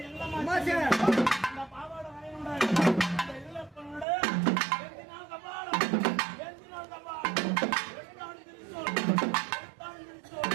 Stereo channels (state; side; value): drops out; left; at 4.0 s